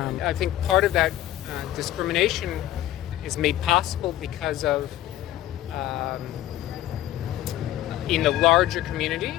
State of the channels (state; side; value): quieter; right; 13.8 dB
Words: I think part of that discrimination is made possible because of in the larger community